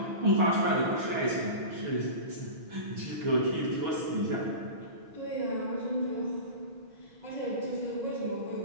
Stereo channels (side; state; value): left; late; 6.3 ms